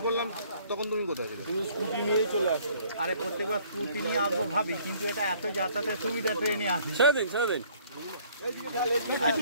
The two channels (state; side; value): inverted; both; correlation -0.59